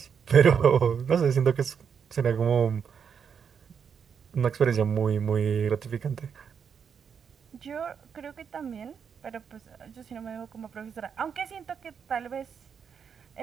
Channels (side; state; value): left; quieter; 7.0 dB